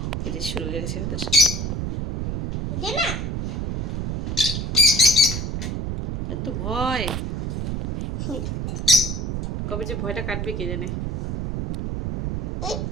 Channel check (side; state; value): right; noise; rumble, 2 dB below the sound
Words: এই যে শুরু হয়ে গেছে ওদের। এত ভয়, কবে যে ভয়টা কাটবে কে জানে।